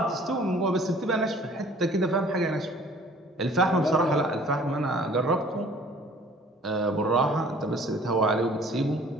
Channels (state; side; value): normal; both; correlation 0.53